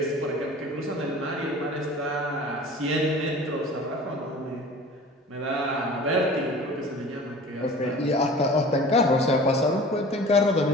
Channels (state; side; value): normal; both; correlation 0.42